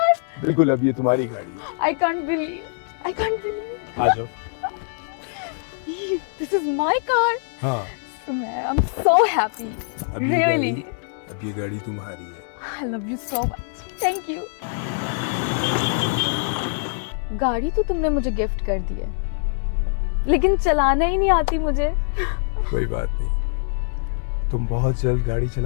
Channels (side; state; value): right; silent; digital silence